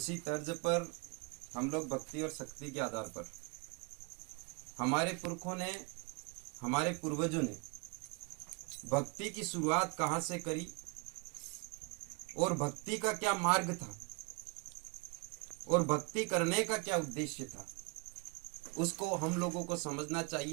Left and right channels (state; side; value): quieter; left; 31.4 dB